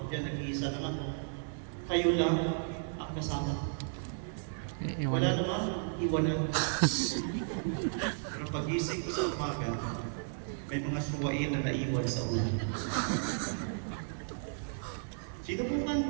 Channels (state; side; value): silent; left; 55 dB below the other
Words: nag-iisa lang ako. Kayo lang ang kasama. Wala naman, iwanan. Pero pag-isip ko sa umaga, may mga suwain na naiwan sa ulan. Sinubukan